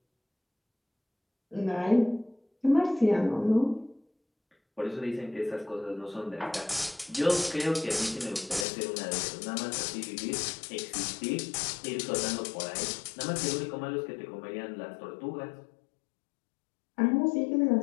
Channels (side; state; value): right; drops out; at 8.7 s